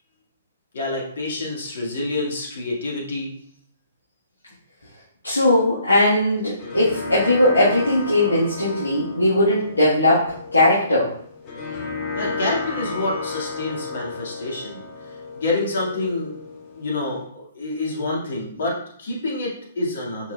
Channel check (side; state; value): both; inverted; correlation -0.63